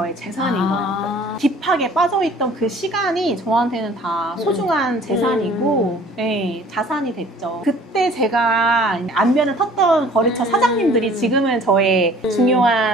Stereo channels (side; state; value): both; normal; correlation 0.51